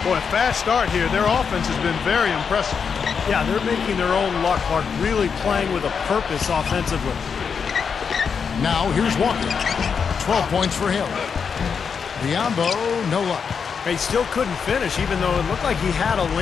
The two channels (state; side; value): quieter; right; 6.3 dB